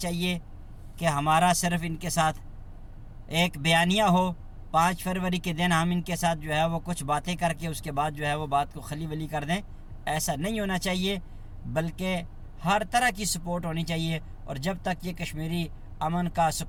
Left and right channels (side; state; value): both; identical; correlation 1.00